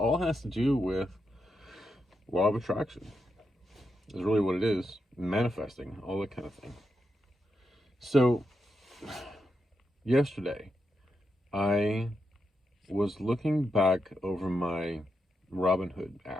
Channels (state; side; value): normal; both; correlation 0.84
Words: has to do with law of attraction. Is really what it is. Manifesting, all that kind of thing. So, yesterday, I was looking back over my Robinhood